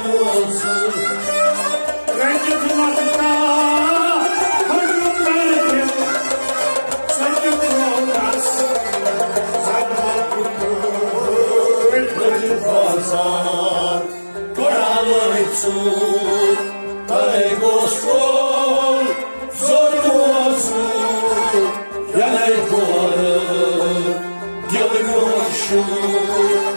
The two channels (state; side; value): inverted; both; correlation -1.00